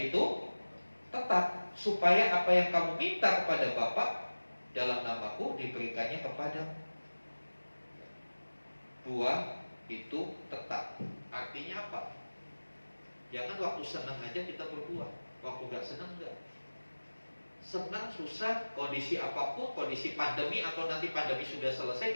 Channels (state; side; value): inverted; both; correlation -1.00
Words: itu tetap, supaya apa yang kamu minta kepada Bapa dalam namaku diberikannya kepadamu. Buah itu tetap. Artinya apa? Jangan waktu senang aja kita berbuah, waktu gak senang enggak. Senang, susah, kondisi apapun, kondisi pandemi atau nanti pandemi sudah selesai,